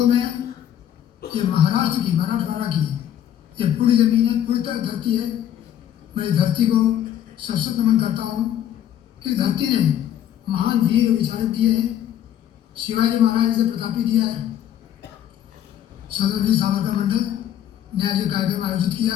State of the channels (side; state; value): right; quieter; 10.8 dB